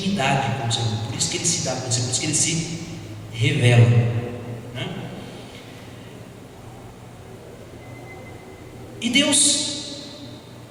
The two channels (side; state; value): both; identical; correlation 1.00